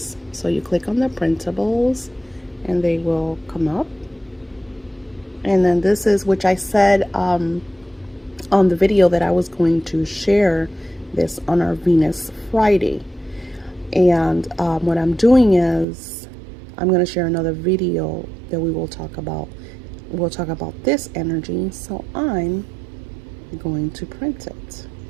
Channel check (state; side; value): drops out; left; at 15.9 s